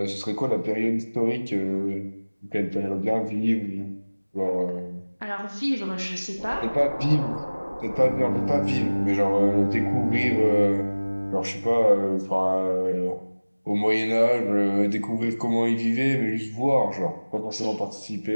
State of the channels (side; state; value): both; inverted; correlation -1.00